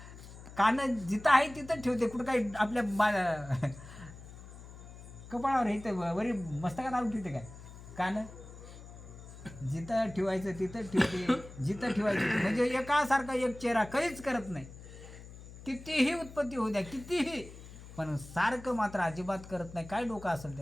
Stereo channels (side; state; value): left; noise; hum, 16 dB below the sound